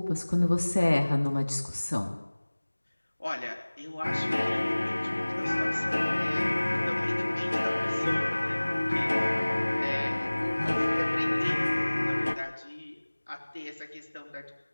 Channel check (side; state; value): both; inverted; correlation -1.00